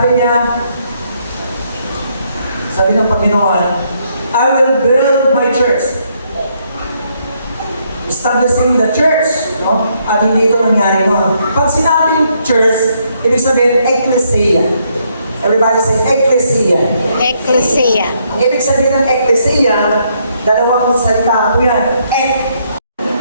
ng Panginoon, I will build my church. Establishing the church. No? At hindi ito nangyari noon. Pag sinabing church, ibig sabihin, ecclesia. Everybody say, ecclesia. Ecclesia. Ang ibig sabihin ng ecclesia, dalawang salita po yan.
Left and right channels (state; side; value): inverted; both; correlation -0.73